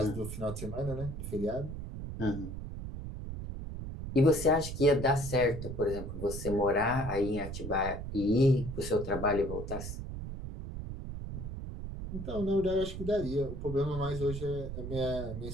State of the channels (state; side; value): noise; right; rumble, 7 dB below the sound